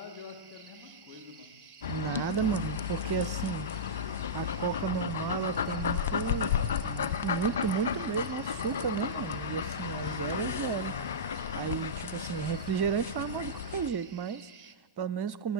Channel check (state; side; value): late; left; 1.1 ms